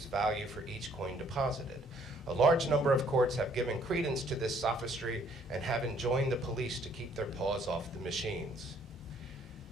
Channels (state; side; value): normal; both; correlation 0.63